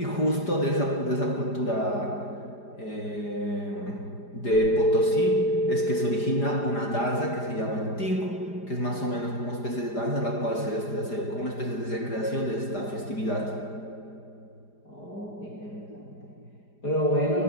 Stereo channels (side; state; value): right; late; 4.9 ms